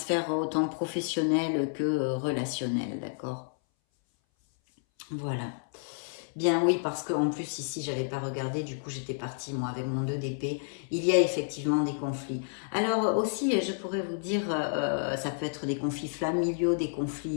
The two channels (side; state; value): right; silent; 58 dB below the other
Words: autant professionnelle que relationnelle, d'accord? Voilà. Bien oui, parce qu'en plus ici, j'avais pas regardé, du coup j'étais partie moi avec mon 2 d'épée. Il y a effectivement des conflits. Alors aussi, je pourrais vous dire, ça peut être des conflits familiaux, des